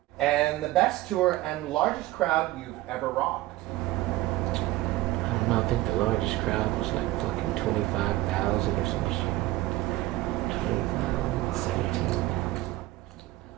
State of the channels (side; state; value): left; quieter; 17.5 dB